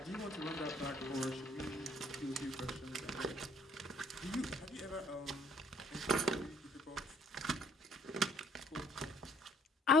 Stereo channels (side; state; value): both; normal; correlation 0.62